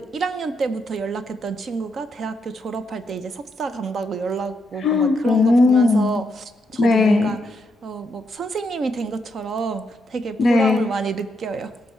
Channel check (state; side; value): normal; both; correlation 0.79